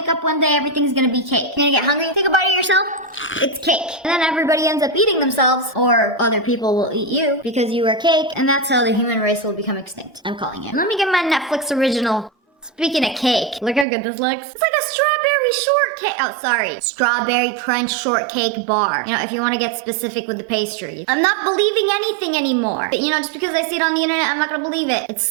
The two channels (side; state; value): left; drops out; at 13.9 s